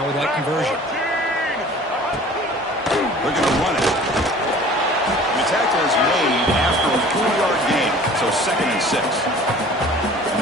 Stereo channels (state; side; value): normal; both; correlation 0.46